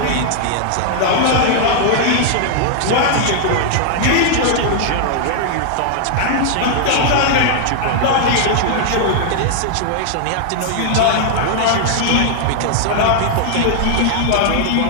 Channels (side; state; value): both; different; correlation 0.00